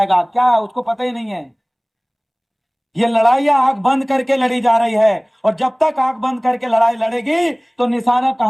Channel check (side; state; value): both; identical; correlation 1.00